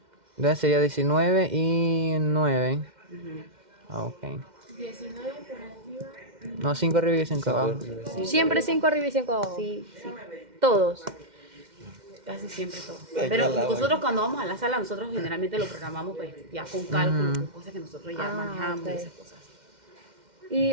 Entonces sería 19 y 9. Ujú. Ah, ok. 19 por arriba. No, 5 arriba y 5 abajo. Siempre 5 arriba y 5 abajo. Sí, sí. Todos. Casi siempre todo. Ay, Pero ya la nosotros cuando vamos a la sala, nosotros generalmente lo programamos pues ya con cálculo, con cosas que nosotros ya manejamos ok. y esas cosas. ¿Y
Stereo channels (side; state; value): left; late; 2.1 ms